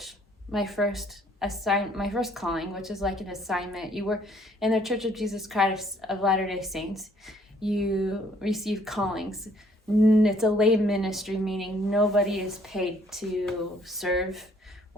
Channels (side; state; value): both; normal; correlation 0.63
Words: My first calling, which is like an assignment. You were in the Church of Jesus Christ of Latter-day Saints. You receive callings. It's a lay ministry, meaning nobody is paid to serve